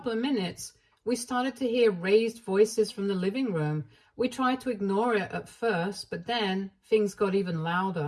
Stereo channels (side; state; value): both; identical; correlation 1.00